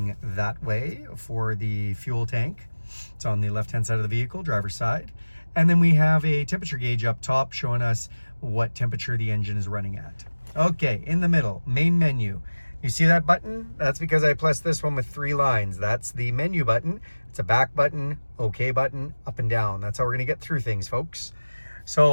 that way for the fuel tank. It's on the left-hand side of the vehicle, driver's side. And then we have a temperature gauge up top showing us what temperature the engine is running at. Okay, in the middle, main menu. You see that button? That's because I pressed this one with 3 lines. That's the menu button. It's a back button, OK button, up and down. That's how we're gonna get through things, folks.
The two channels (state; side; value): inverted; both; correlation -1.00